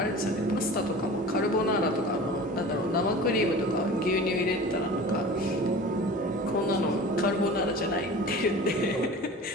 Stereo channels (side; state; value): both; normal; correlation 0.38